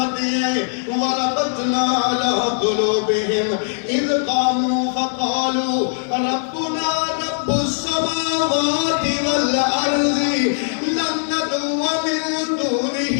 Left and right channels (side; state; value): right; silent; digital silence